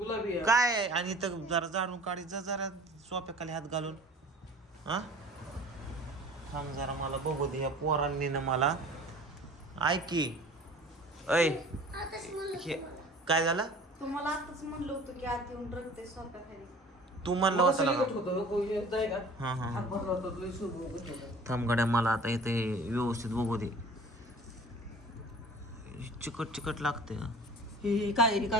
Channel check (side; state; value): both; normal; correlation 0.45